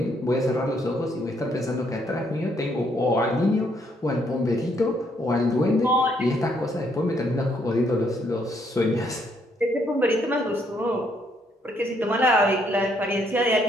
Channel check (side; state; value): both; normal; correlation 0.71